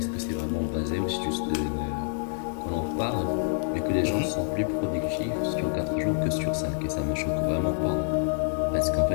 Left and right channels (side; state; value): right; silent; digital silence